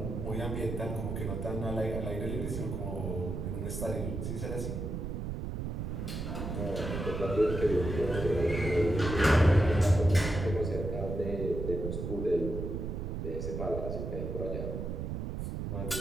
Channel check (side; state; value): right; noise; rumble, 4 dB below the sound